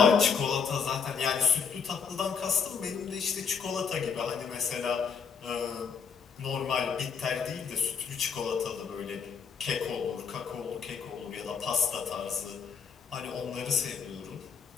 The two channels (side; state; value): right; quieter; 6.2 dB